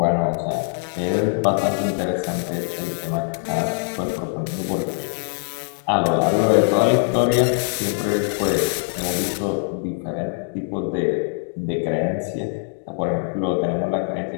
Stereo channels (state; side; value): silent; right; 63 dB below the other